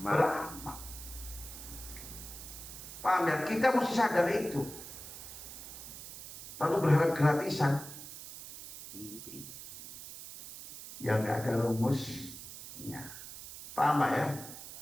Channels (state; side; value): noise; right; hiss, 12 dB below the sound